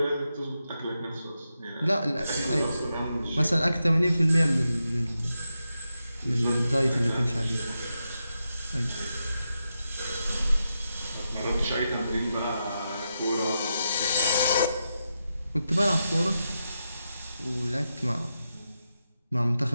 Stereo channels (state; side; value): inverted; both; correlation -0.87